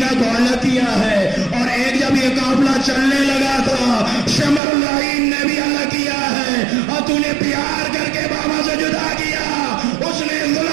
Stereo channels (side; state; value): left; drops out; at 4.6 s